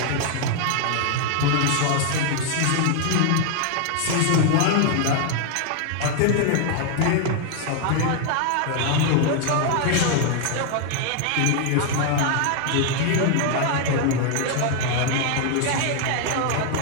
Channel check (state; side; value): different; both; correlation 0.00